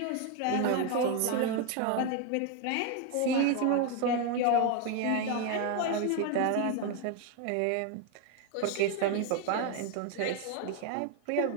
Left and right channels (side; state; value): both; different; correlation 0.01